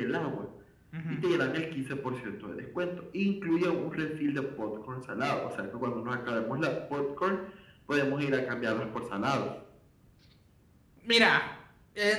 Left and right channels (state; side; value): identical; both; correlation 1.00